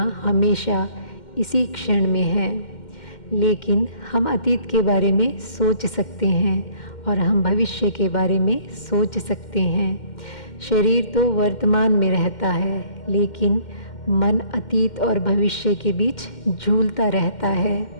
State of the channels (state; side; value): late; right; 2.1 ms